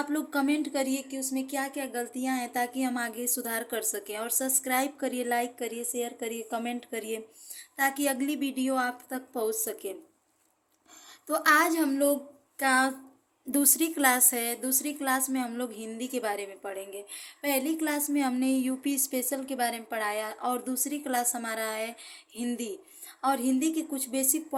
लोग कमेंट करिए कि उसमें क्या क्या गलतियां हैं ताकि हम आगे सुधार कर सकें। और सब्सक्राइब करिए, लाइक करिए, शेयर करिए, कमेंट करिए ताकि अगली वीडियो आप तक पहुंच सके। तो आज हम लोग का दूसरी क्लास है। दूसरी क्लास में हम लोग हिंदी के बारे में पढ़ेंगे। पहली क्लास में हमने यूपी स्पेशल के बारे में पढ़ाया और दूसरी क्लास हमारा है हिंदी। और हिंदी के कुछ बेसिक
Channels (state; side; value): identical; both; correlation 1.00